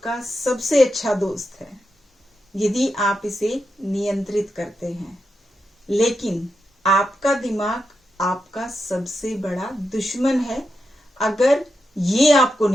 सबसे अच्छा दोस्त है यदि आप इसे नियंत्रित करते हैं, लेकिन आपका दिमाग आपका सबसे बड़ा दुश्मन है अगर ये आपको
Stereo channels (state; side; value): normal; both; correlation 0.87